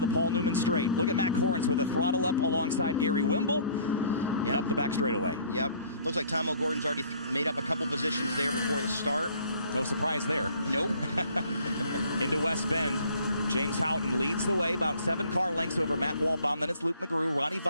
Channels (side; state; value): both; inverted; correlation -0.54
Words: Paul Newman straight. Look at Matt Corrins with a throttle up alongside Gary Wimble. Yep. Up the back straightaway. Yep. Looks like Tom O'Gordon's already made up a couple positions there before the start. No surprise there. Nope. Into West Bend. James Houghton leads the way, about 7 car lengths over Matt Waldbaum. Then it's Luke McGrew, Ronnie